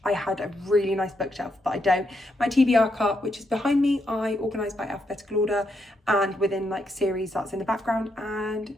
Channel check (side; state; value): both; normal; correlation 0.80